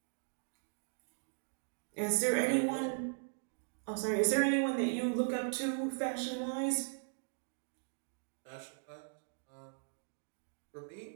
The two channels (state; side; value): silent; left; digital silence